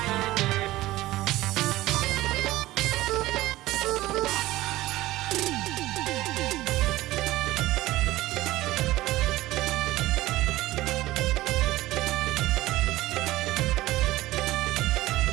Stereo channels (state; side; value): quieter; left; 17.1 dB